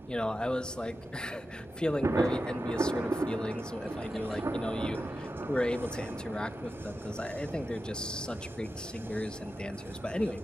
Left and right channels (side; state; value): both; normal; correlation 0.91